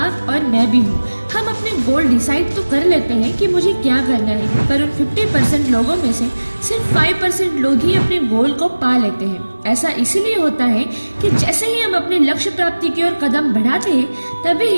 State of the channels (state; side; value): inverted; both; correlation -1.00